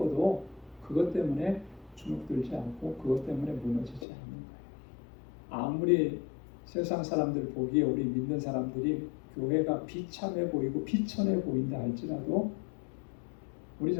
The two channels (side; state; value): right; drops out; at 4.0 s